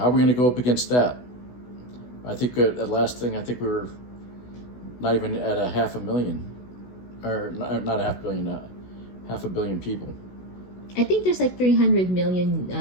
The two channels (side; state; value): right; late; 16 ms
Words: are we going to go up against that? I think at last thing, I think we were not even at a 500,000, or not a 500,000,000, 500,000,000 people. I think there's like 300 million